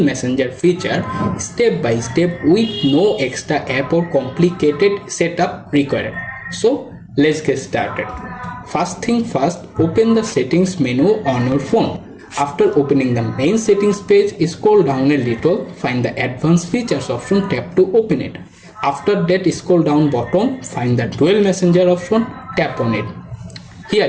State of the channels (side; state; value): both; identical; correlation 1.00